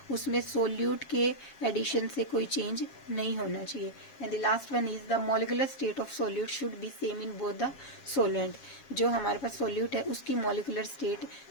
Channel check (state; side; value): late; right; 7.3 ms